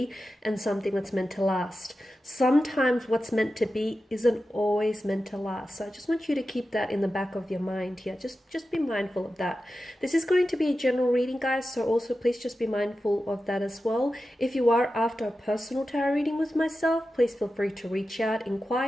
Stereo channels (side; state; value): both; normal; correlation 0.92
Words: and something that's meant to last. Sometimes what's meant to be isn't always meant to last. So I just want you to keep that in the back of your mind here. Just be mindful of that. This is going to be a general reading, guys, so also please just be mindful of that as well. If you are after a personal tarot reading with myself, please feel free to reach out,